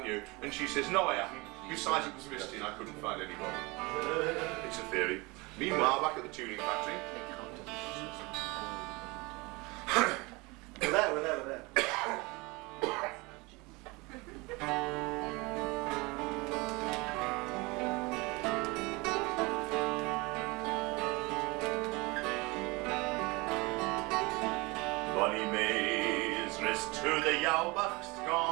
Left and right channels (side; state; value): left; quieter; 25.2 dB